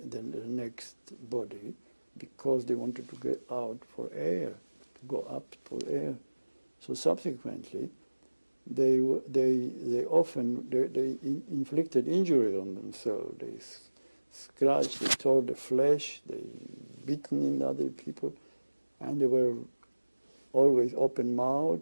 next body because they wanted to get out for air, to go up for air. So subsequently, they often inflicted injury on themselves. They scratched, they tore the flesh, they beaten in other people, and they were always open-mouthed,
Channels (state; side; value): inverted; both; correlation -1.00